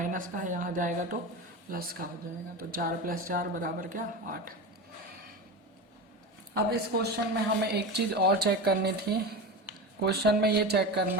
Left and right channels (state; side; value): normal; both; correlation 0.25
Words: का है, यहाँ जाएगा तो प्लस का हो जाएगा। तो 4 + 4 बराबर क्या 8। अब इस क्वेश्चन में हमें एक चीज़ और चेक करनी थी। क्वेश्चन में ये चेक